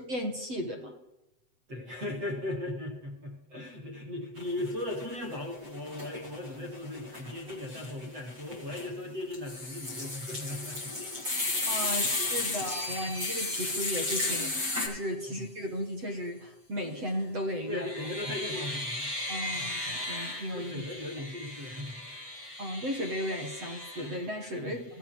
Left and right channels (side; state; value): left; late; 7.9 ms